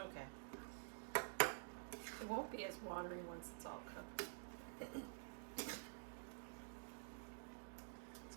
It won't be as watery once it's all cooked. It's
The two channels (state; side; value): silent; left; digital silence